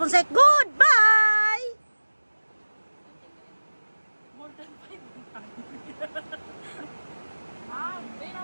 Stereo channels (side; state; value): both; inverted; correlation -1.00